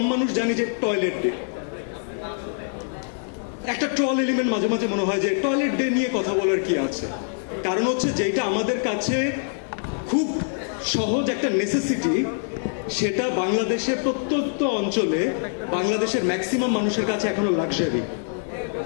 মানুষ জানি যে টয়লেট একটা ট্রল এলিমেন্ট মাঝে মাঝে মনে হয় যে টয়লেট ডে নিয়ে কথা বলার কি আছে। কারণ হচ্ছে যেটা আমাদের কাছে খুব সহজ একটা নেসেসিটি, সেটা বাংলাদেশের প্রত্যন্ত অঞ্চলে বাংলাদেশের ম্যাক্সিমাম মানুষের কাছে এখনো লাক্সারি।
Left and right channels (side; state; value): right; silent; digital silence